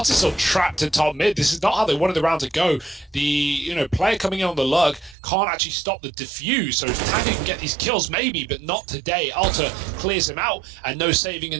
still trapped in top mid. This is not how they wanted the round to go. The player coming in on the lurk can't actually stop the defuse, so Tanya can get these kills maybe, but not today. Alta clears him out, and no saving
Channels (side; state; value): left; drops out; at 5.2 s